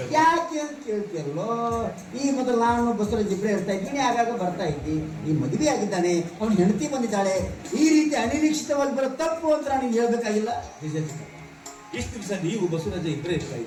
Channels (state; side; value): identical; both; correlation 1.00